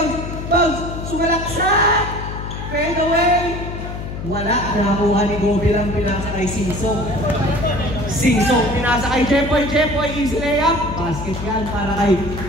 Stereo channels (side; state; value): left; noise; hum, 7 dB below the sound